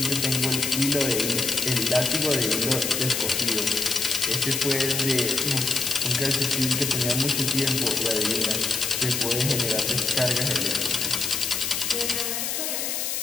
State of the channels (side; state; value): left; noise; hiss, 1 dB below the sound